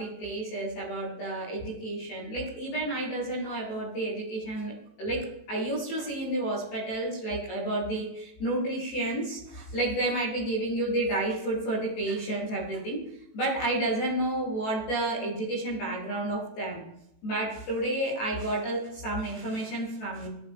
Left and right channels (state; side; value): late; right; 18 ms